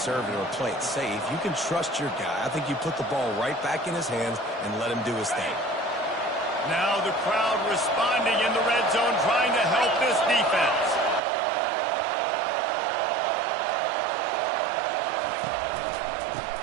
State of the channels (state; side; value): drops out; left; at 11.2 s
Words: or play it safe. You can trust your guy. I think you put the ball right back in his hands and let him do his thing. Now the crowd responding in the red zone, trying to help this defense.